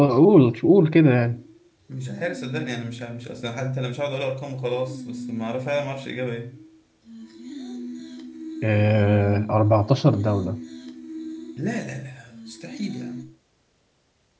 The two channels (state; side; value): identical; both; correlation 1.00